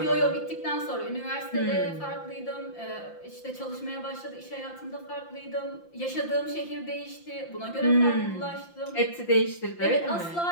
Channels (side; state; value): right; late; 5.8 ms